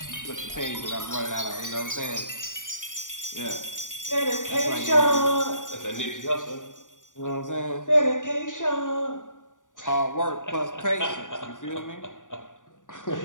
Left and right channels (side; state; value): right; late; 0.87 ms